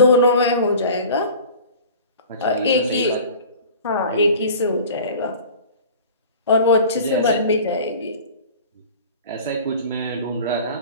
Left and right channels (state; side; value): inverted; both; correlation -0.41